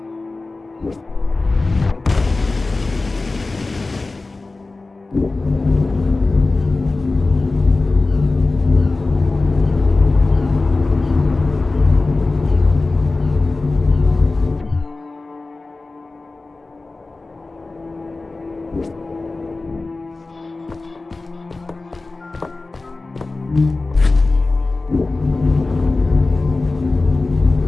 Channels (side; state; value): right; quieter; 3.4 dB